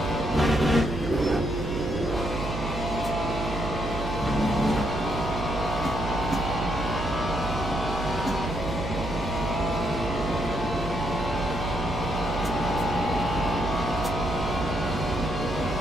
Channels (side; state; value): right; noise; hum, 6 dB below the sound